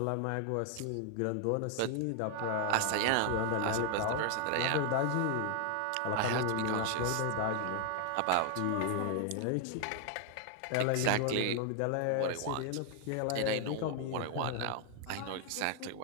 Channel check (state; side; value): different; both; correlation 0.00